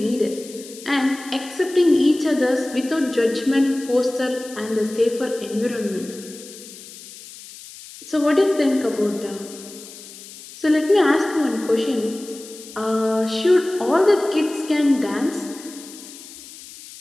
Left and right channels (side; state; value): left; noise; hiss, 17 dB below the sound